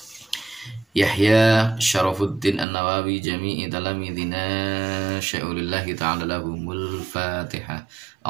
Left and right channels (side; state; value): left; drops out; at 2.7 s